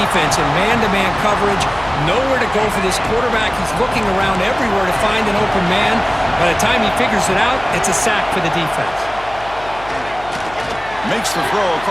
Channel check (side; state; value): left; noise; hum, 18 dB below the sound